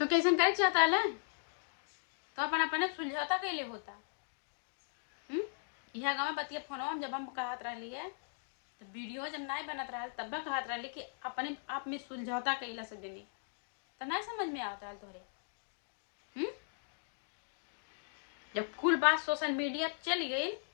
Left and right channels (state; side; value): silent; right; digital silence